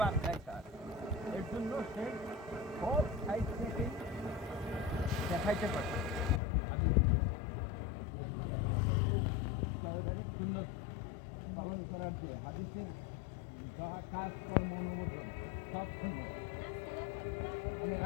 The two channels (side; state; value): right; drops out; at 6.4 s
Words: দেয় স্যার, এর জন্য সে সব সাইড থেকেই দেখাইতে পারে। সুন্দর পালন করার যে হাদিসের কাজ কর্ম অনুমোদন সব সুন্দর, মানে